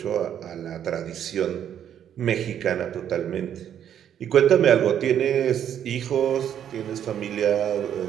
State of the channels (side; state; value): left; quieter; 9.6 dB